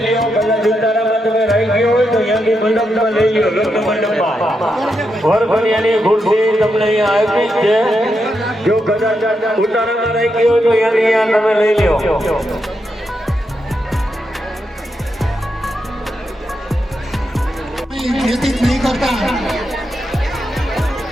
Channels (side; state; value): both; normal; correlation 0.84